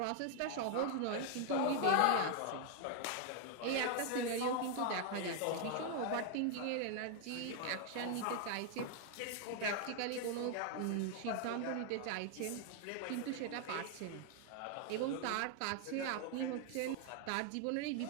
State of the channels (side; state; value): both; different; correlation 0.00